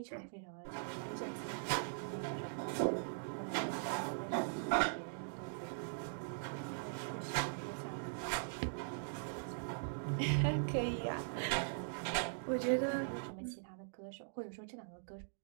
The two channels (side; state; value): left; silent; digital silence